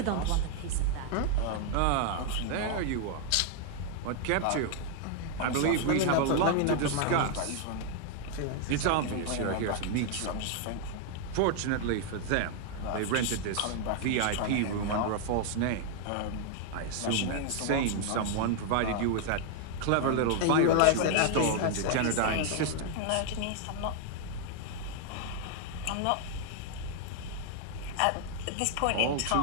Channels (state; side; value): different; both; correlation 0.00